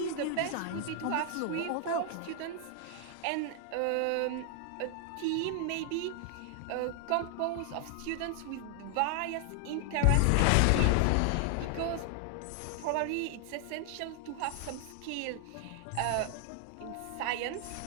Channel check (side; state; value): both; different; correlation 0.00